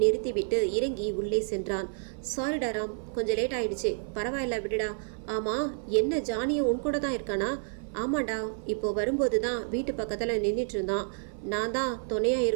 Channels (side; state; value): left; silent; 56 dB below the other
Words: நிறுத்திவிட்டு இறங்கி உள்ளே சென்றான். சாரிடா ராம், கொஞ்சம் லேட் ஆயிடுச்சு. பரவாயில்ல விடுடா. ஆமா, என்ன ஜானியும் உன் கூட தான் இருக்கானா? ஆமாண்டா, இப்போ வரும்போது தான் வீட்டு பக்கத்தில் நின்றுட்டு இருந்தான். நான் தான் துணையா